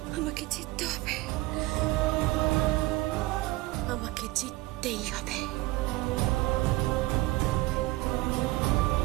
আমাকে জিততে হবে, আমাকে জিততেই হবে।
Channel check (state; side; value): quieter; left; 19.7 dB